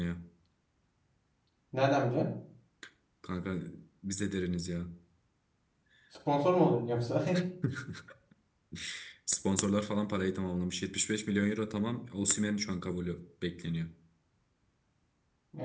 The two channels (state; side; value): identical; both; correlation 1.00